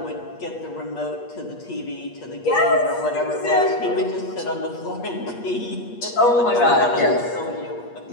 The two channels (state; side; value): late; right; 8.4 ms